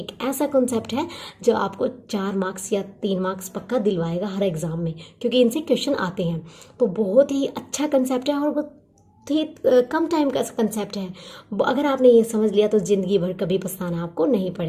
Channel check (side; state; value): both; identical; correlation 1.00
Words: ऐसा कंसेप्ट है जो आपको 4 मार्क्स या 3 मार्क्स पक्का दिलवाएगा हर एग्ज़ाम में, क्योंकि इनसे क्वेश्चन आते हैं। तो बहुत ही अच्छा कंसेप्ट है और बहुत ही कम टाइम का कंसेप्ट है। अगर आपने ये समझ लिया तो ज़िंदगी भर कभी पछताना आपको नहीं